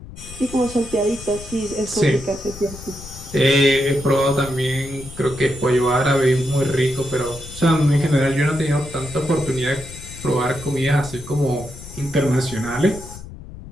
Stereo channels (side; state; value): left; noise; rumble, 15 dB below the sound